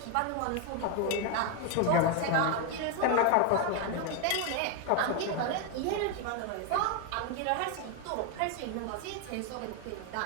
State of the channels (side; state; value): both; different; correlation 0.01